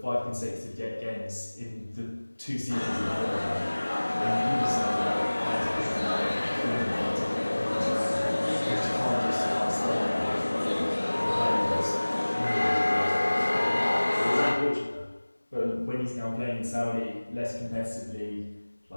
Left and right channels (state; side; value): inverted; both; correlation -1.00